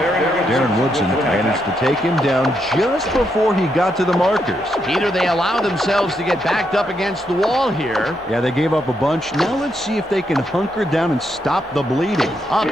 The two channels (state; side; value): normal; both; correlation 0.79